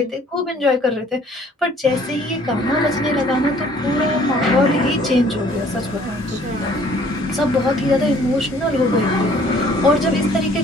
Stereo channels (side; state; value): both; normal; correlation 0.57